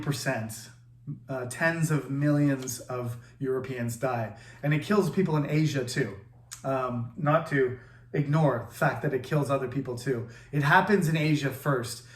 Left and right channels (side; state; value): both; identical; correlation 1.00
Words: Tens of millions of Europeans die. And it kills people in Asia too. Not to ignore the fact that it kills other people too. It happens in Asia first,